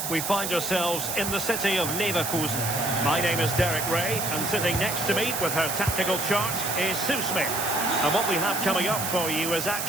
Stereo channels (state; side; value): noise; right; hiss, 3 dB below the sound